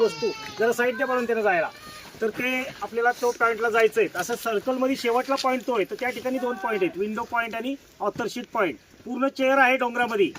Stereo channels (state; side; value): identical; both; correlation 1.00